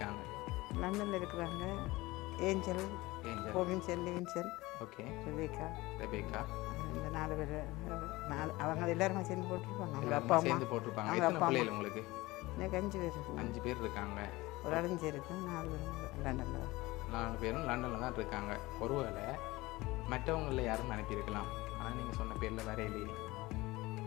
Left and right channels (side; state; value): right; quieter; 20.3 dB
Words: லண்டனில் இருக்கிறாங்க. Angel, Robinson, Levinson, okay, Rebecca. இந்த 4 பேர். அவங்க எல்லாருமே சேர்ந்து போட்டிருப்பாங்க. அவங்க அப்பா அம்மா சேர்ந்து போட்டிருப்பாங்க. அவங்க எத்தனை அப்பா பிள்ளைகள் உங்களுக்கு? எனக்கு 5 பேர் இருக்கு. 5 பேர் இருக்காங்க. ஒரு அடைஞ்சு இருக்கு. 4 பேர் லண்டனில். 4 பேரும் லண்டனில் தான் இருக்காங்க. ஒருவேளை மற்றவங்களில் யாரும் அனுப்பியிருக்கலாம். ஆனால் நீங்கள் சொன்ன பேரில் வேற இல்லையே.